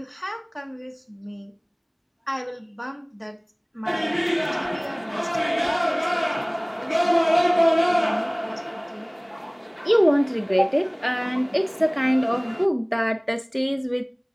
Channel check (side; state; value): both; identical; correlation 1.00